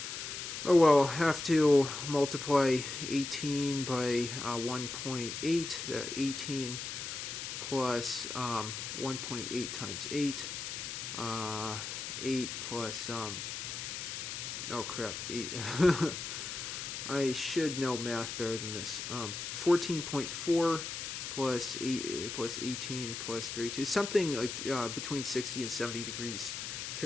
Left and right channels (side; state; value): left; noise; hiss, 6 dB below the sound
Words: Oh well, I'll have to multiply 18 by 1.8, 18 plus 1.8 times 8, 8 plus, oh crap, 8, I should know math better than this, 14.4 plus 8 plus 18 plus 32, something like between 60 and 70 degrees